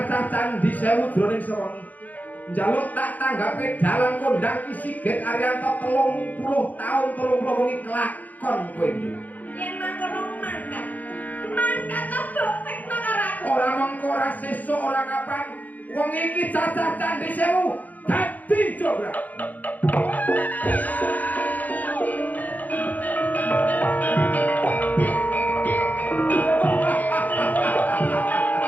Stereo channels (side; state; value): right; late; 0.080 ms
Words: candi 1000 jroning sewengi. Njaluk tak tanggapi dalang kondang ki Sigit Ariyanto 30 taun 30 wengi kelakon kowe iki. yen mangkono mangkat. Mangkat mbok tekno karo aku. Ora mengko ora sesuk ora kapan wong iki cacah candi 1000 dadi jograk.